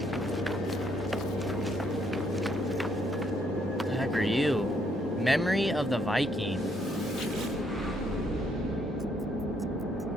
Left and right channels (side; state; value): both; normal; correlation 0.71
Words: What the heck are you? Memory of the Viking.